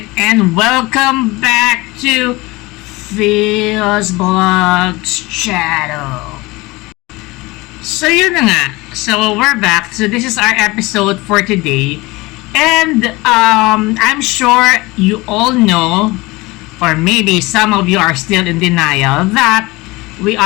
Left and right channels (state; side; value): quieter; right; 22.3 dB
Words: and welcome back to Bldg's channel. So yun na nga, so we're back. So this is our episode for today, and I'm sure you all know, or maybe some of you are still in denial, that we